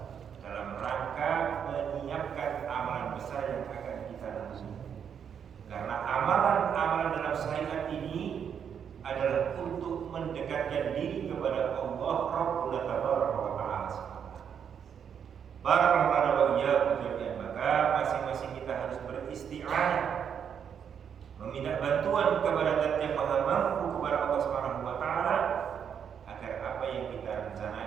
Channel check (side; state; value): left; quieter; 7.8 dB